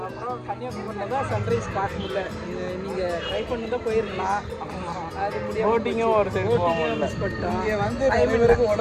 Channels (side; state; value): both; identical; correlation 1.00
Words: அப்புறம் கன்னியாகுமரியில் தான் சன்ரைஸ் பார்க்க முடியல. நீங்கள் ட்ரை பண்ணி தான் போயிருக்கலாம். அது முடியாது. போட்டிங்கும் ஒரு சைடு மிஸ் பண்ணிட்டோம். இங்கே வந்து இவருக்கு